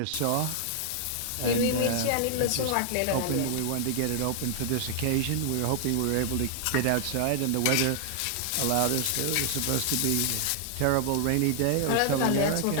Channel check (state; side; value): different; both; correlation 0.00